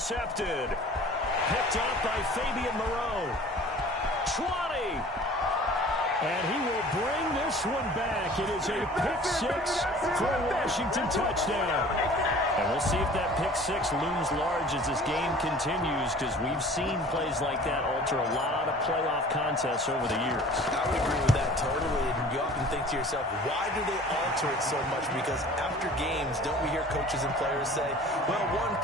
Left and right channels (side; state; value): both; normal; correlation 0.46